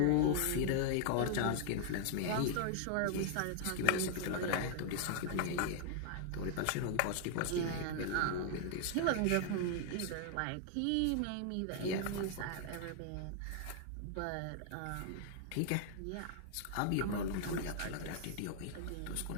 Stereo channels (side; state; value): both; different; correlation -0.01